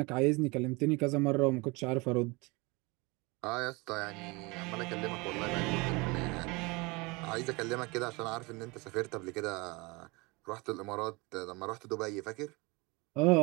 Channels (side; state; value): left; quieter; 26.1 dB